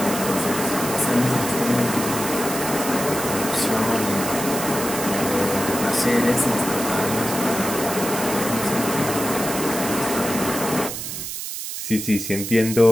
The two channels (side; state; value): right; noise; hiss, 6 dB below the sound